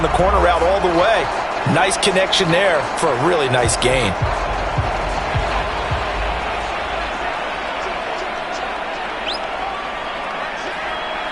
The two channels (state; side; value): identical; both; correlation 1.00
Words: the corner route all the way. Nice connection there for a really nice gain.